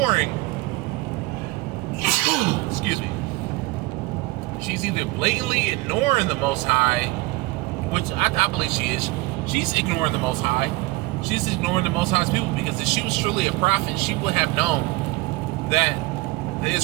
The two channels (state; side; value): quieter; left; 21.8 dB